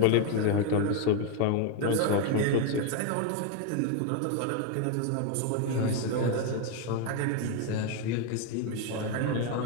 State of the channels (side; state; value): both; different; correlation 0.02